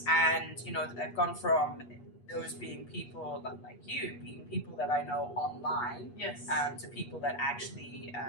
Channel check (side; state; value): right; late; 8.3 ms